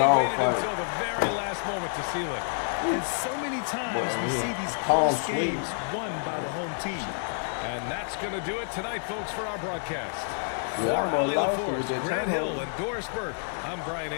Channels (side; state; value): right; silent; digital silence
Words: dog waited fight. until the very last moment to seal it. And so many times we see these Palm close sweet. games won by the home team. And that's going to do it tonight, folks, for our broadcast. Yeah, For I'm Ali lost LaForce, with that Grant time Hill, hold. and Doris Burke, I'm Brian